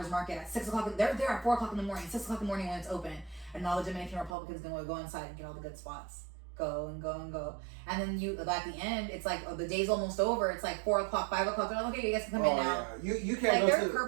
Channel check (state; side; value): drops out; left; at 4.4 s